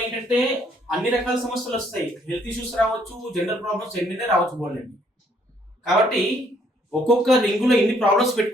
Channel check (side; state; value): both; normal; correlation 0.67